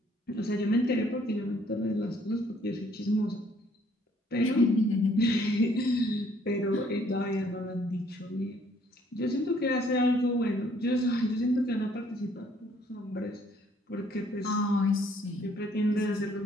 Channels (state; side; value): normal; both; correlation 0.63